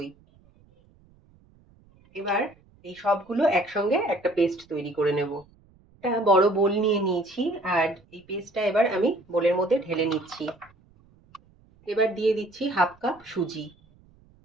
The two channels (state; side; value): noise; right; rumble, 30 dB below the sound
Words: এবার এই সবগুলো একসঙ্গে একটা পেস্ট তৈরি করে নেব। একটা বড় বোল নিয়ে নিয়েছি, আর এই পেস্টটা এবার আমি বোলের মধ্যে ঢেলে নিচ্ছি। এবার দিয়ে দিচ্ছি 1/2 কাপ সুজি।